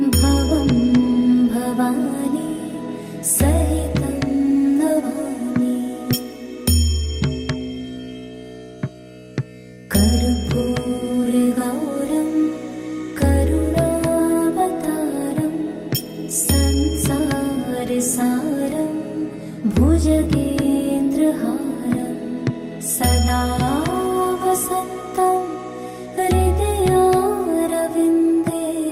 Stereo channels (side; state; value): both; identical; correlation 1.00